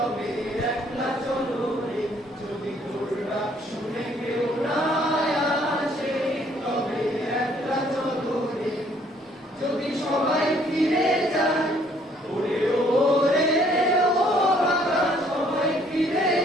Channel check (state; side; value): normal; both; correlation 0.63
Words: একলা চলো রে। যদি তোর ডাক শুনে কেউ না আসে তবে একলা চলো রে। যদি সবাই ফিরে যায় ওরে ওরে ও বাবা, সবাই ফিরে